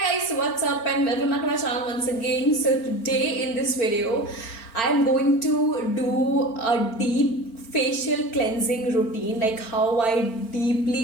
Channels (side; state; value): right; late; 4.4 ms